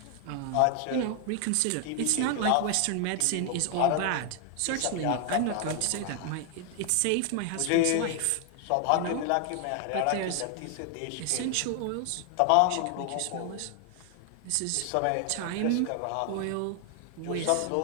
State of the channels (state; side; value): different; both; correlation 0.00